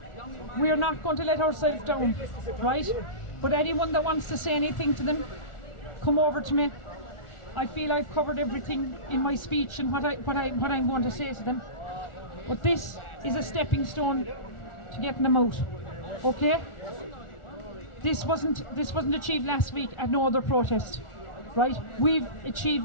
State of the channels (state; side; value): late; right; 1.3 ms